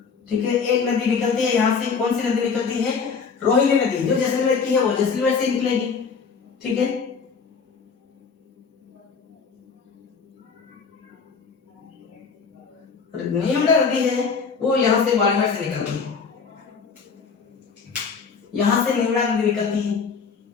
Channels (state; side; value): quieter; right; 5.5 dB